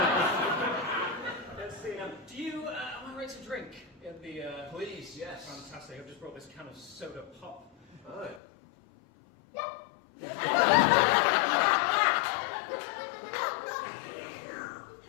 Let's see now. Do you? Am I ready to drink? In the. Please, yes. Fantastic. I've just brought this can of soda pop. Right.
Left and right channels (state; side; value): drops out; right; at 8.4 s